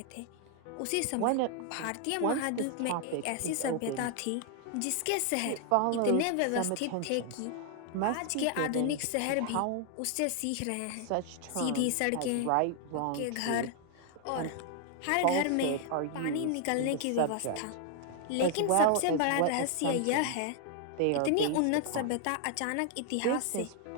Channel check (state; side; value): different; both; correlation 0.00